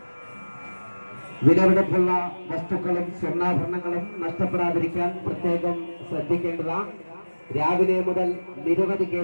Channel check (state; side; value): inverted; both; correlation -1.00